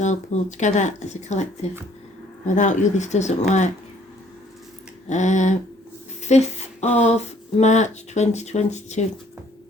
pool, together as a collective. Without you this doesn't work. 5th of March 2022.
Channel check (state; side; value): normal; both; correlation 0.61